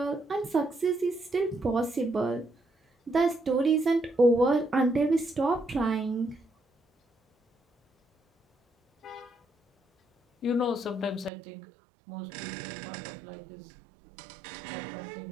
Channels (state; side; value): drops out; left; at 11.3 s